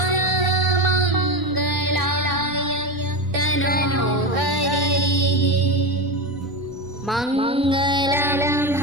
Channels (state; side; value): noise; right; rumble, 23 dB below the sound